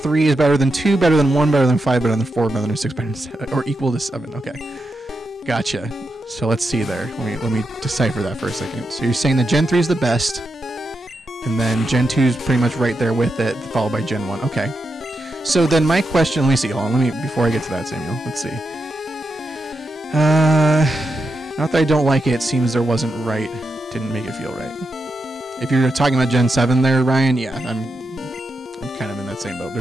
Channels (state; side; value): normal; both; correlation 0.86